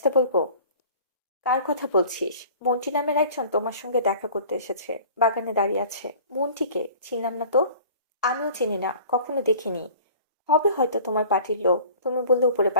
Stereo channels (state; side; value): inverted; both; correlation -0.46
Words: বলবো। কার কথা বলছিস? মন্টি নামের একজন তোমার সঙ্গে দেখা করতে এসেছে, বাগানে দাঁড়িয়ে আছে। মন্টিকে চিনলাম না তো। আমিও চিনি না, কখনো দেখিনি। হবে হয়তো তোমার পার্টির লোক, তুমি বললে উপরে